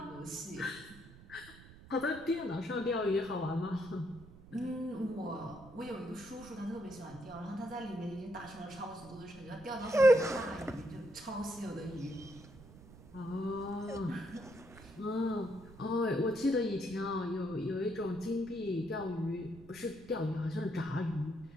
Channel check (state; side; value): noise; right; rumble, 19 dB below the sound